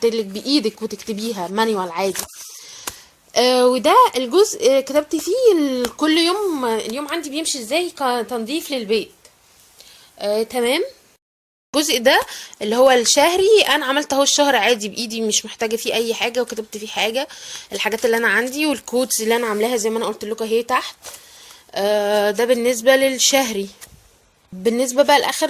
لك بايدك وتكتبيها مانيوال عادي. وده الجزء كتبت فيه كل يوم اليوم عندي بيمشي ازاي كتنظيف للبيت. تمام. الجزء ده اللي هو الشهري انا عملت اهو الشهر عادي بايدي، مش محتاجه فيه اي حاجه، وكتبت فيه حاجه الحاجات اللي انا عندي والكودز اللي انا عاملاها زي ما انا قلت لكم اهي تحت. ده بالنسبه للشهري. بالنسبه بقى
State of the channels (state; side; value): identical; both; correlation 1.00